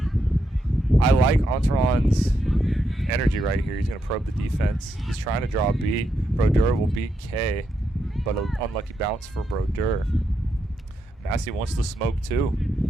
I like Entourage's energy right here. He's going to probe the defense. He's trying to draw a beat. Brodeur will beat K, but an unlucky bounce for Brodeur. Massey wants the smoke too.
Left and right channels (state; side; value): normal; both; correlation 0.81